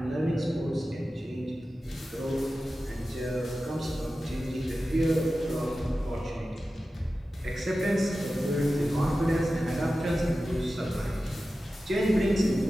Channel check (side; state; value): both; normal; correlation 0.94